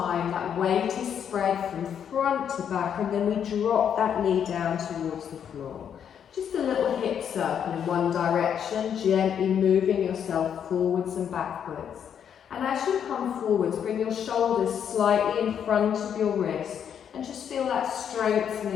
That weight is spread from front to back, and then we drop that knee down towards the floor. Just a little hip circle in one direction, gently moving yourself forwards and backwards. And as you come forwards, bring your shoulders slightly in front of your wrists and just feel that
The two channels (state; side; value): quieter; right; 8.4 dB